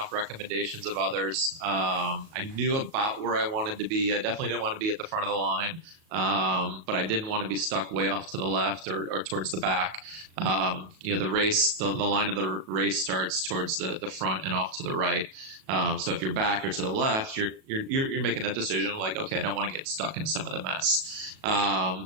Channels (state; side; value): late; left; 37 ms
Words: recommendations of others. I knew about where I wanted to be. I definitely didn't want to be at the front of the line, but I didn't want to be stuck way off to the left or towards the back. The race, the line of the race starts towards the front and off to the right. So if you're back or to the left, you're making that decision like, okay, I don't want to get stuck in some of the mess.